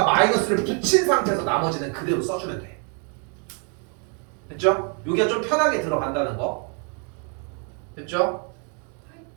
마이너스를 붙인 상태에서 나머지는 그대로 써주면 돼. 됐죠? 여기가 좀 편하게 들어간다는 거. 됐죠?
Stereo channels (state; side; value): quieter; left; 38.9 dB